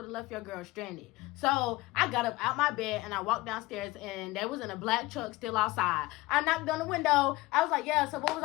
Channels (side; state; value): right; quieter; 20.1 dB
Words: have left your girl stranded. So I got up out my bed, and I walked downstairs, and there was in a black truck still outside. I knocked on the window. I was like, yeah, so what was